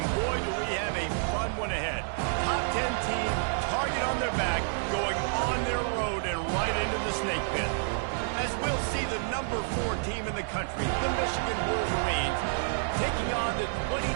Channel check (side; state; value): left; silent; digital silence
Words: boy, do we have a fun one ahead. Top 10 team, target on their back, going on their road and right into the snake pit. As we'll see the number 4 team in the country, the Michigan Wolverines, taking on the